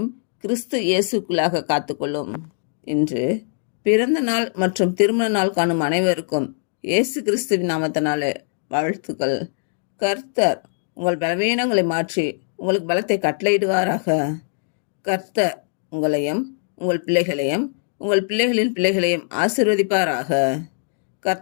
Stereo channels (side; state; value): right; silent; digital silence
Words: கிறிஸ்து இயேசுக்குள்ளாக காத்துக்கொள்ளும். இன்று பிறந்த நாள் மற்றும் திருமண நாள் காணும் அனைவருக்கும் இயேசு கிறிஸ்துவின் நாமத்தினாலே வாழ்த்துக்கள். கர்த்தர் உங்கள் பலவீனங்களை மாற்றி உங்களுக்கு பலத்தை கட்டளையிடுவாராக. கர்த்தர் உங்களையும் உங்கள் பிள்ளைகளையும் உங்கள் பிள்ளைகளின் பிள்ளைகளையும் ஆசீர்வதிப்பாராக.